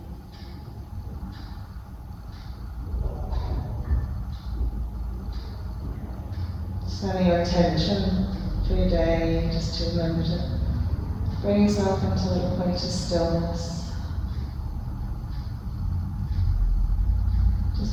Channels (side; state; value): both; identical; correlation 1.00